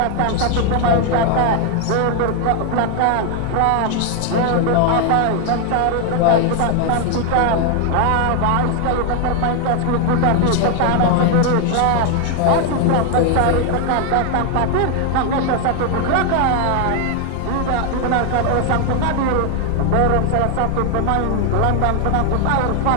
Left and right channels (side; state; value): both; different; correlation 0.00